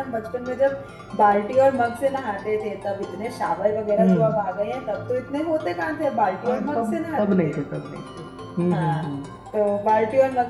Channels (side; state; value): both; identical; correlation 1.00